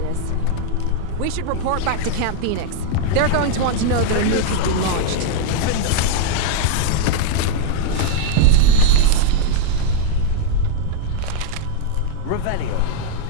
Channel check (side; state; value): both; different; correlation 0.00